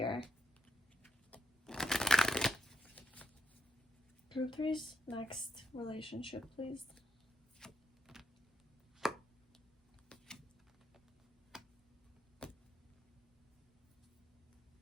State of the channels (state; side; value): normal; both; correlation 0.81